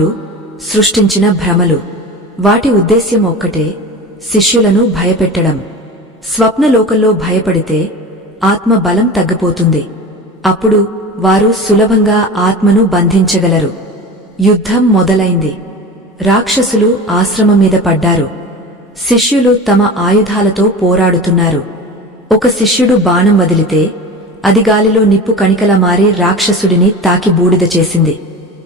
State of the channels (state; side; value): normal; both; correlation 0.32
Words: సృష్టించిన భ్రమలు. వాటి ఉద్దేశ్యం ఒక్కటే, శిష్యులను భయపెట్టడం. స్వప్నలోకంలో భయపడితే ఆత్మ బలం తగ్గిపోతుంది. అప్పుడు వారు సులభంగా ఆత్మను బంధించగలరు. యుద్ధం మొదలైంది. రాక్షసులు ఆశ్రమం మీద పడ్డారు. శిష్యులు తమ ఆయుధాలతో పోరాడుతున్నారు. ఒక శిష్యుడు బాణం వదిలితే అది గాలిలో నిప్పు కణికలా మారి రాక్షసుడిని తాకి బూడిద చేసింది.